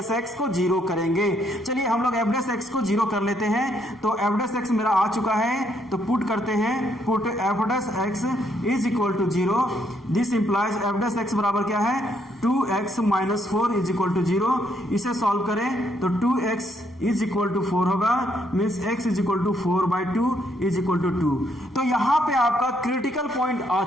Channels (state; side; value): normal; both; correlation 0.72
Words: एक्स को जीरो करेंगे। चलिए हम लोग एफ डैश एक्स को जीरो कर लेते हैं। तो एफ डैश एक्स मेरा आ चुका है तो पुट करते हैं, put F dash x is equal to zero. This implies F dash X बराबर क्या है 2x minus 4 is equal to zero. इसे सॉल्व करें तो 2x इज इक्वल टू 4 होगा, means x is equal to 4/2 is equal to 2। तो यहां पे आपका क्रिटिकल पॉइंट आ